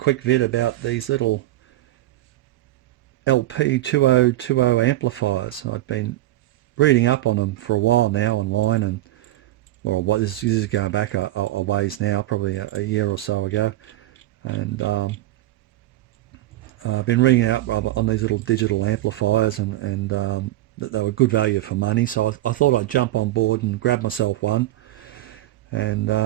vid about these little Lepy2020 amplifiers. I've been reading up on them for a while now online, and this is going back a ways now, probably a year or so ago, and I've been reading up on these little digital amplifiers, and that they were good value for money, so I thought I'd jump on board and grab myself one, and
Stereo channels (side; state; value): left; quieter; 15.7 dB